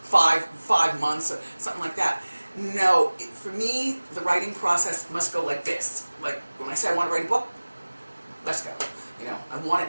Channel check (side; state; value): both; inverted; correlation -1.00